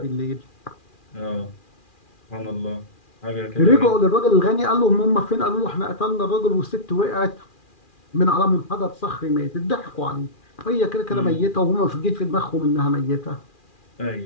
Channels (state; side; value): late; right; 2.4 ms